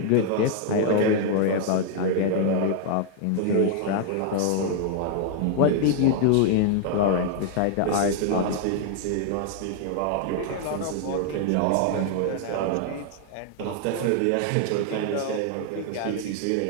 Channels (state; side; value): different; both; correlation 0.00